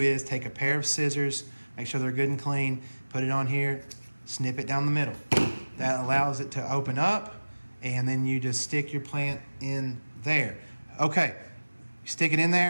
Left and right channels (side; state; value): both; inverted; correlation -1.00